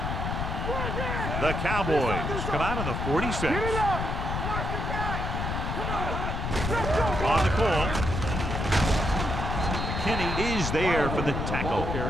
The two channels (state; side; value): noise; left; rumble, 2 dB below the sound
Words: Run that. The Cowboys come out on the 46. Get it up. Watch the back. Come on. Let's go. On the call. McKinney is there for the tackle